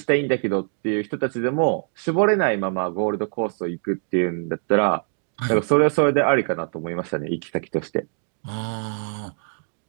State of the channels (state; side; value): silent; left; digital silence